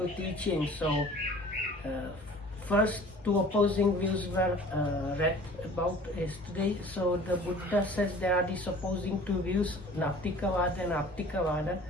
teaching. So first two opposing views were read about yesterday. So the Buddha says there are these opposing two views, Nattikavada and Attikavada.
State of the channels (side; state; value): both; normal; correlation 0.47